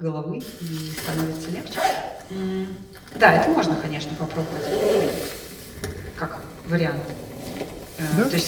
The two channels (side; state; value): both; identical; correlation 1.00